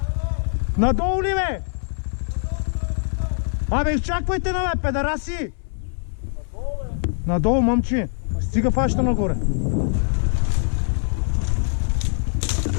Надолу ли, бе? Абе, изчаквайте на, бе, педараси! Надолу, момчи! Стига фаща нагоре.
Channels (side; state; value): right; silent; 62 dB below the other